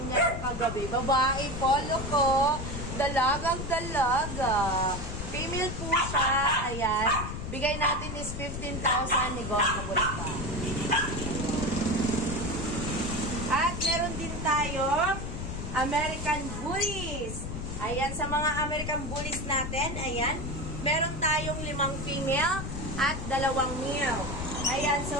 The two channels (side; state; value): left; noise; rumble, 6 dB below the sound